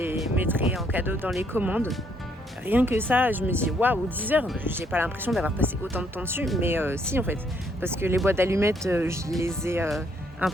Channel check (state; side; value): normal; both; correlation 0.70